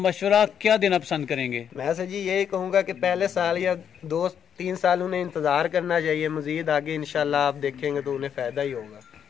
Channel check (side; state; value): right; quieter; 8.4 dB